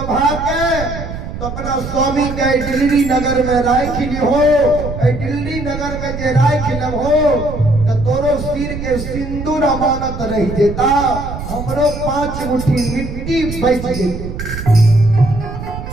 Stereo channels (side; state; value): right; noise; rumble, 8 dB below the sound